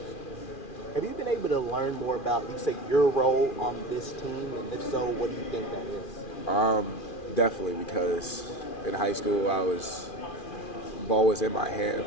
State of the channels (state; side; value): late; right; 2.4 ms